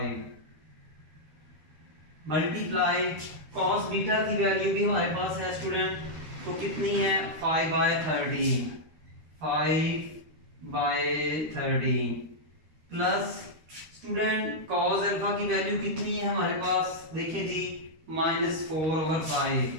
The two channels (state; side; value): late; left; 13 ms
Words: मल्टीप्लाई कॉस बीटा की वैल्यू भी हमारे पास है स्टूडेंट, तो कितनी है 5/13, 5/13 प्लस स्टूडेंट कॉस अल्फा की वैल्यू कितनी है हमारे पास, देखिए जी -4/5,